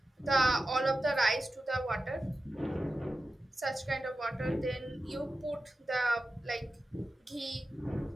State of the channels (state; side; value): normal; both; correlation 0.93